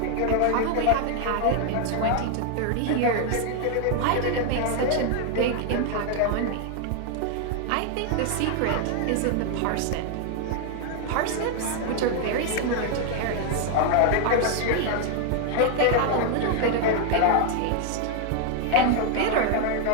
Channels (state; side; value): different; both; correlation 0.00